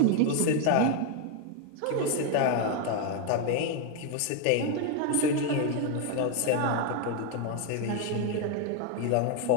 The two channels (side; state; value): both; different; correlation 0.01